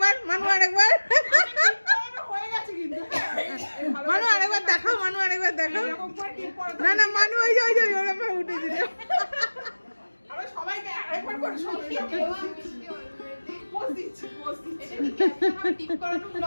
হয়ে গেছে কিন্তু মানু আরেকবার দেখাও না না মানু ওই যে ওরকম উঠে দিল আমরা সবাইকে আরেকবার করে সবাই পোজ দিচ্ছি টিপ করানো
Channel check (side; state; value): both; inverted; correlation -1.00